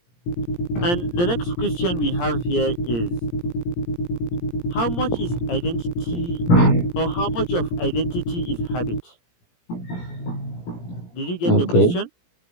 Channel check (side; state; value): right; late; 17 ms